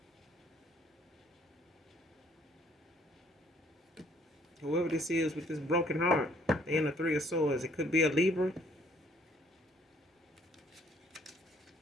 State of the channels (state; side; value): normal; both; correlation 0.63